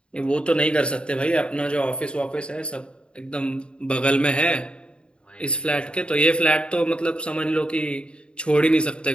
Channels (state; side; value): late; right; 0.054 ms